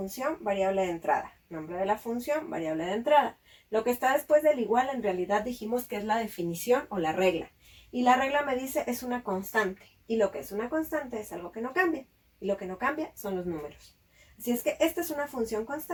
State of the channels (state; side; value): identical; both; correlation 1.00